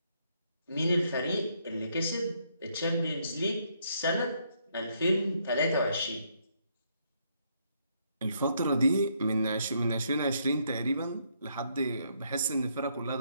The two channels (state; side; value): inverted; both; correlation -0.73